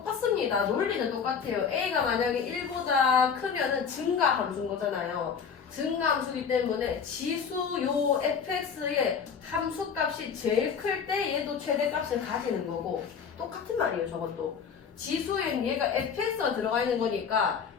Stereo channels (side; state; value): right; quieter; 6.5 dB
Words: 논리는 똑같아요. a가 만약에 1보다 크면은 증가 함수인 거잖아요. 증가 함수이기 때문에 지수 요 fx의 함수값이 제일 클 때 얘도 최대값을 가지는 거고 똑같은 말이에요. 저것도. 지수엔 얘가 fx가 들어가 있는 거니까